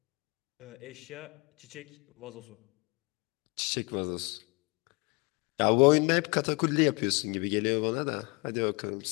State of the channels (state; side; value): quieter; right; 28.8 dB